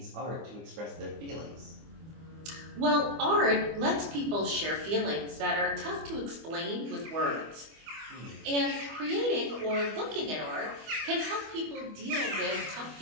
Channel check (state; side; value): late; left; 25 ms